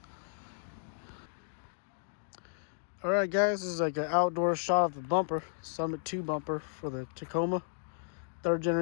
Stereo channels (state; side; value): silent; right; digital silence